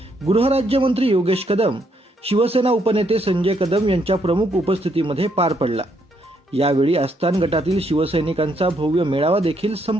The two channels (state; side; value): normal; both; correlation 0.74